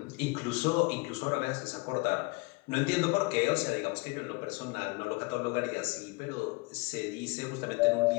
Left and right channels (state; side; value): quieter; right; 26.7 dB